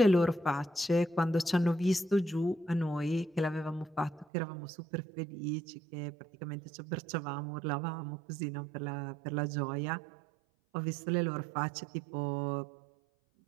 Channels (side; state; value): left; drops out; at 4.2 s